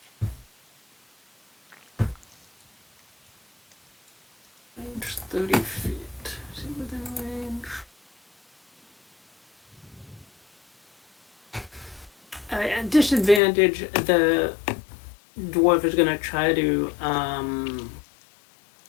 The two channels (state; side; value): drops out; right; at 13.4 s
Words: Range 30 feet. Is he within range? At disadvantage, the dwarf is going to try to